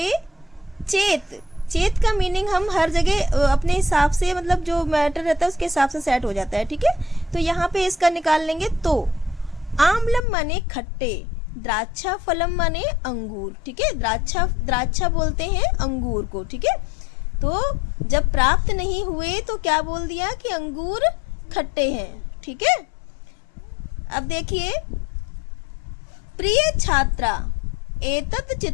चेत चेत का मीनिंग हम हर जगह अपने हिसाब से, मतलब जो मैटर रहता है उसके हिसाब से सेट हो जाता है, ठीक है? तो यहाँ पे इसका निकाल लेंगे। तो आम्लम माने खट्टे, द्राक्षा फलम माने अंगूर, ठीक है? द्राक्षा बोलते हैं अंगूर को, ठीक है? तो जब प्राप्त नहीं हुए तो क्या बोल दिया कि अंगूर खट्टे हैं, ठीक है? अब देखिए, प्रिय छात्रा एतत्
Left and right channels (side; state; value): right; drops out; at 10.2 s